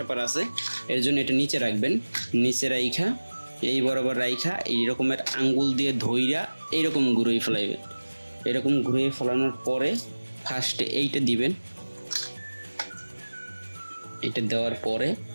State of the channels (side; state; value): both; inverted; correlation -1.00